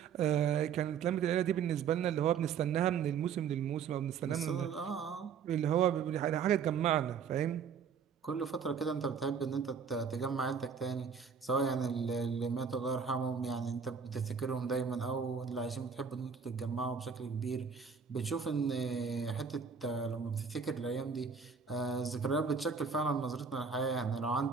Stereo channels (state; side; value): quieter; left; 6.4 dB